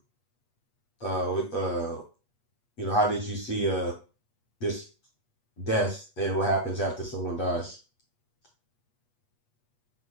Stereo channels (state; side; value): late; right; 8.4 ms